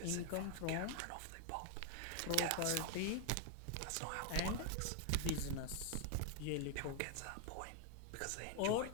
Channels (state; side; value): different; both; correlation 0.00